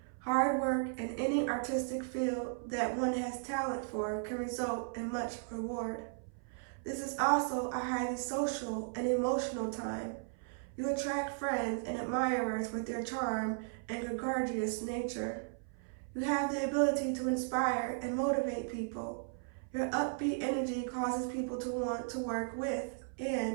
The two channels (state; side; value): silent; left; 54 dB below the other